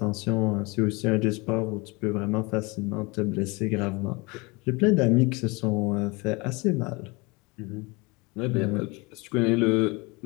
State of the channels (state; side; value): quieter; right; 26.4 dB